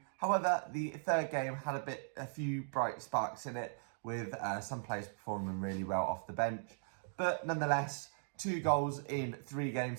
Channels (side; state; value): left; silent; digital silence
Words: However, the third game had a few bright sparks in it, with some players performing really well off the bench. But nonetheless, 2 goals in 3